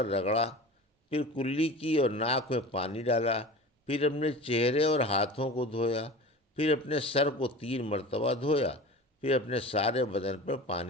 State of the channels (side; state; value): both; normal; correlation 0.35